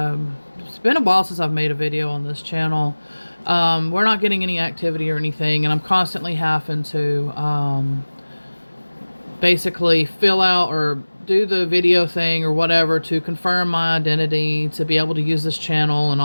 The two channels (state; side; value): inverted; both; correlation -1.00